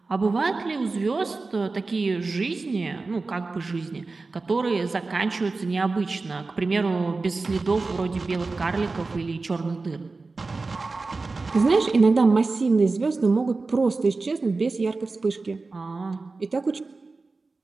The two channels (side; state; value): left; quieter; 3.8 dB